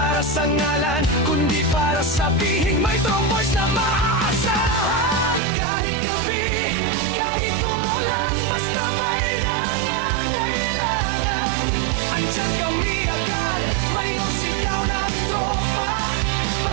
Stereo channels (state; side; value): drops out; left; at 5.4 s